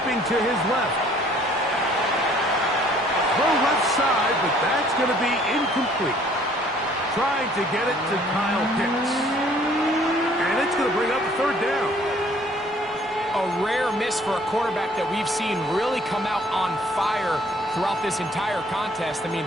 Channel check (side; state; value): both; normal; correlation 0.58